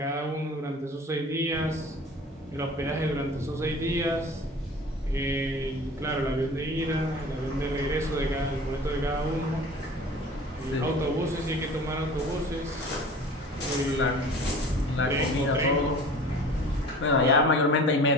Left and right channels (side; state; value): both; normal; correlation 0.42